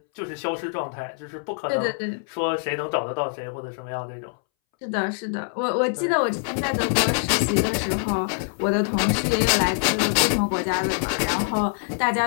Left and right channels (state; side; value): silent; right; 62 dB below the other